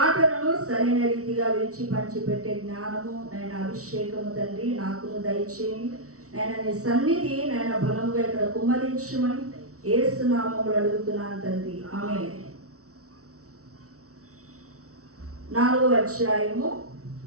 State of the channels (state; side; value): late; left; 0.64 ms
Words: సరైన రీతిగా విడిచి పంచిపెట్టే జ్ఞానము, నేను అభిషేకము తండ్రి నాకును దయచేయండి. నేను నీ సన్నిధి నేను బలముగా ఇక్కడ కుమ్మరించమని యేసు నామములో అడుగుతున్నాను తండ్రి, ఆమేన్. 4వ అధ్యాయము